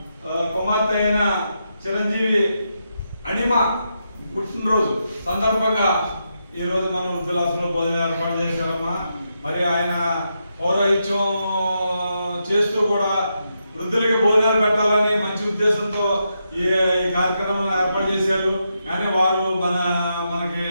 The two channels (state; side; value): inverted; both; correlation -0.84